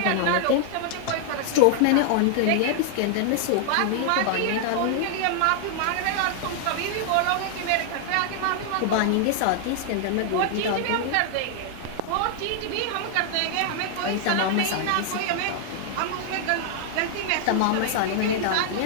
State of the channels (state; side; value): different; both; correlation 0.00